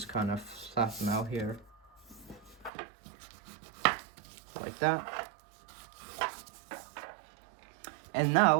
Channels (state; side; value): drops out; left; at 2.7 s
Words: kind of flatten out here. Like that. And